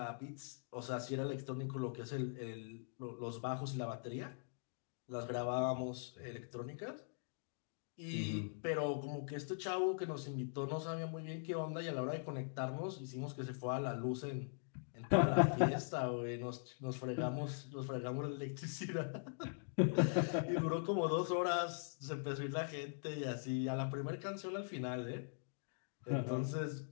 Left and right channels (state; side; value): silent; right; digital silence